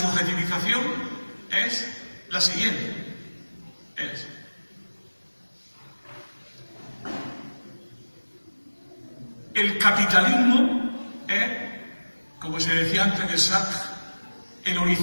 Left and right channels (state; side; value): inverted; both; correlation -1.00